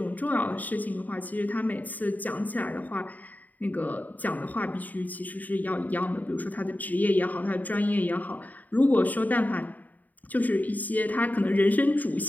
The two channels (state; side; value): late; right; 0.080 ms